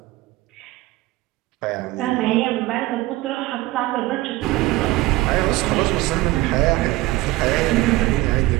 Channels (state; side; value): quieter; left; 18.5 dB